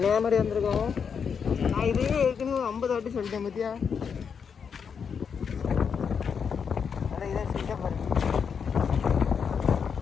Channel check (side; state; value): right; quieter; 6.6 dB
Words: வந்திருக்கோம். நான் இதே ஏற்கனவே 50 வாட்டி சொல்லிட்டேன் பத்தியா. அதான் இதான் சொல்லிட்டேன் பாருங்க